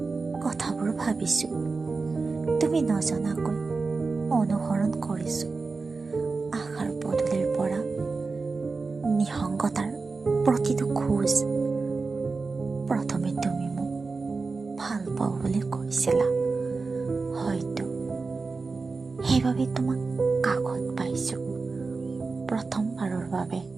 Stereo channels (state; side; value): quieter; left; 4.1 dB